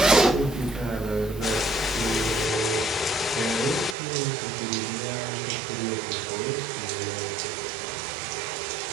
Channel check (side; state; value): left; drops out; at 4.0 s